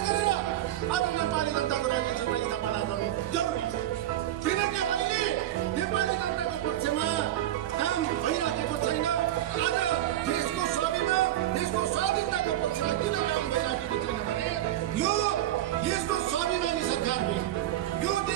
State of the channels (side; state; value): left; quieter; 13.2 dB